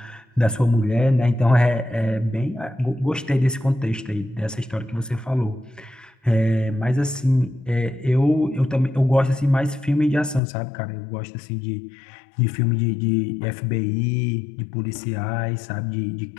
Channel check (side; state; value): right; drops out; at 10.4 s